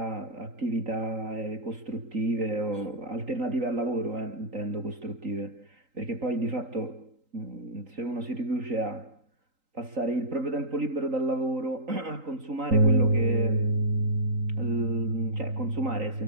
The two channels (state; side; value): late; left; 3.8 ms